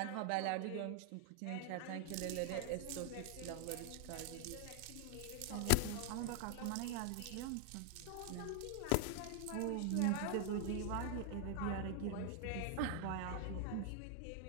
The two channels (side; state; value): both; different; correlation 0.00